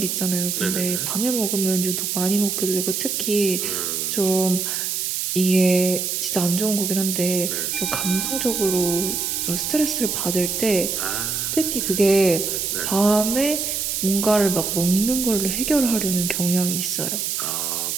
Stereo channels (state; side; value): noise; right; hiss, 1 dB below the sound